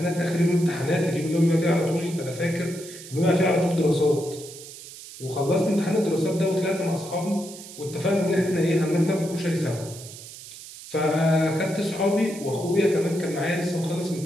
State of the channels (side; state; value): right; noise; hiss, 15 dB below the sound